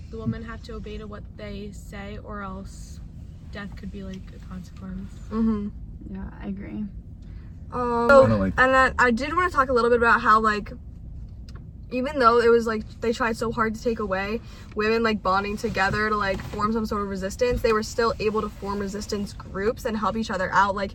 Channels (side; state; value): both; identical; correlation 1.00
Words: the women have to obey to what they say, or else death could be, like, a consequence. Yeah, I agree. And then I did want to talk a little bit about how, like, even though it was, like, they tried so hard to take away women, like, bonding together to, like, form some sort of resistance, they were still able to form resistance groups and help each other out.